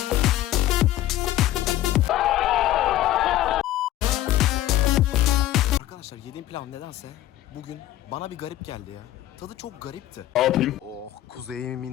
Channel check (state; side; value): quieter; right; 14.0 dB